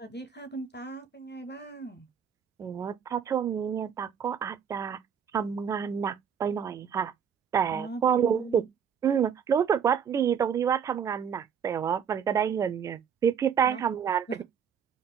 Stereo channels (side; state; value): left; quieter; 7.6 dB